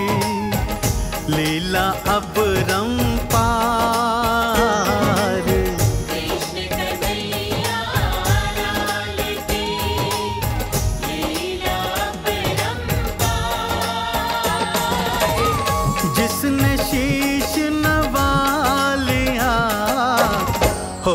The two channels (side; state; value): both; identical; correlation 1.00